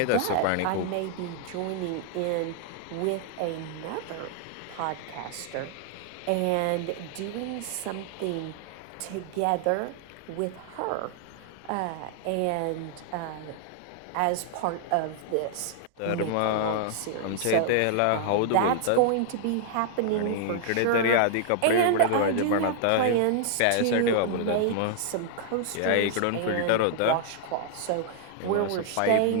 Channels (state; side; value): different; both; correlation -0.01